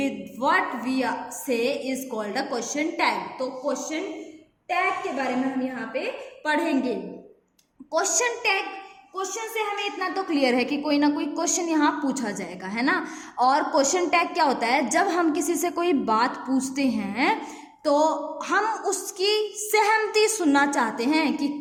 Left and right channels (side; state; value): both; identical; correlation 1.00